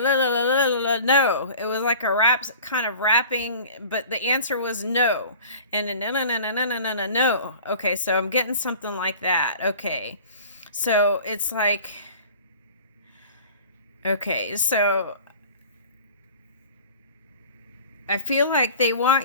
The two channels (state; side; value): inverted; both; correlation -0.43